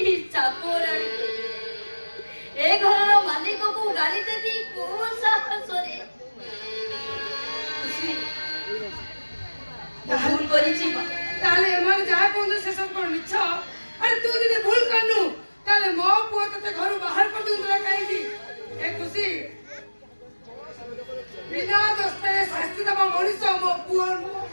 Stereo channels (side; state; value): both; inverted; correlation -1.00